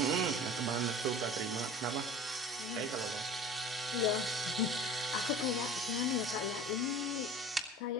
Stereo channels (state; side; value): normal; both; correlation 0.40